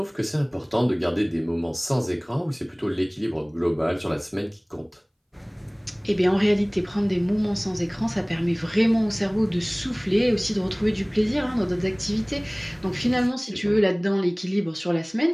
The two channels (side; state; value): both; identical; correlation 1.00